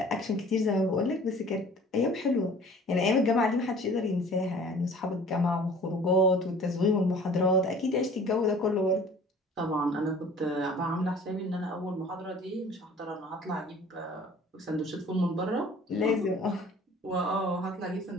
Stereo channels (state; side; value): normal; both; correlation 0.48